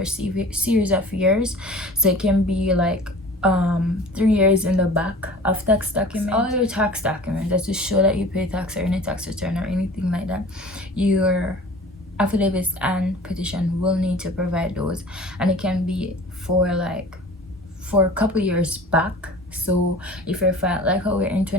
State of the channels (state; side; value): normal; both; correlation 0.42